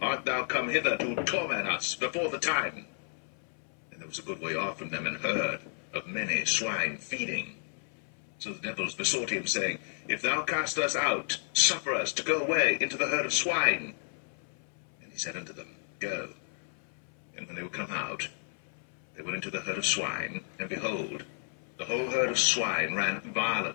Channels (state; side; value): silent; right; 56 dB below the other